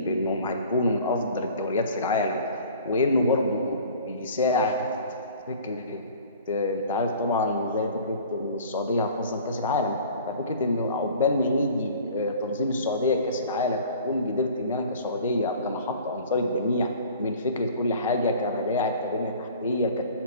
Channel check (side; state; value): both; inverted; correlation -0.46